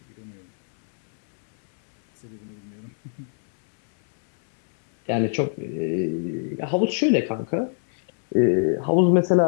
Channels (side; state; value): right; silent; 63 dB below the other